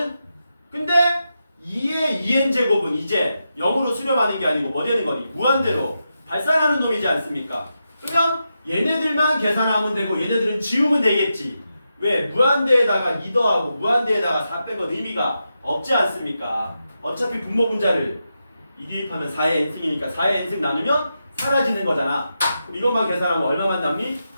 근데 2의 2n제곱은 이제 0으로 수렴하는 게 아니고 뭐 되는 거니? 무한대로 발산하는 놈이지 않습니까? 그러면 얘네들만 계산하면 되고 얘네들은 지우면 되겠지. 왜? 무한대에다가 2 더하고 무한대에다가 4 빼건 의미가 없지 않습니까? 어차피 분모 분자를 2 대입하면 4의 n승이니까 4의 n승 나누면 사라지는 거잖아. 그럼 이것만 계산하면 얼마만 남니?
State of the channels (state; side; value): inverted; both; correlation -0.87